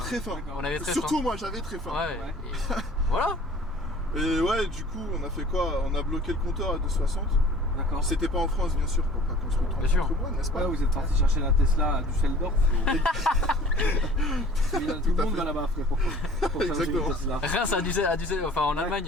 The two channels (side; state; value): both; normal; correlation 0.48